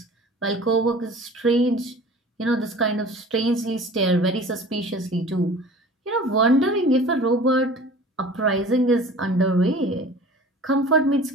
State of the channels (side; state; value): both; normal; correlation 0.43